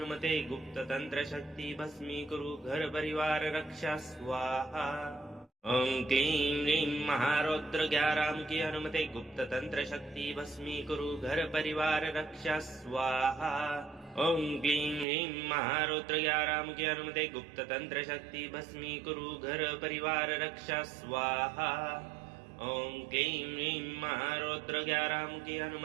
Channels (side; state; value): left; drops out; at 15.1 s